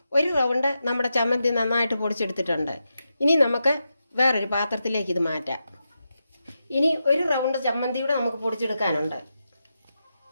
1 റൗണ്ട് നമ്മുടെ ചമ്മന്തി നന്നായിട്ട് പൊടിച്ചെടുത്തിട്ടുണ്ട്. ഇനി നമുക്ക് വേറൊരു പാത്രത്തിലേക്ക് ഇത് മാറ്റാം. ഇനി 1 റൗണ്ട് ചമ്മന്തിയുടെ നമുക്ക് പൊടിച്ചെടുക്കാനുണ്ട്.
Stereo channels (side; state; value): both; inverted; correlation -0.88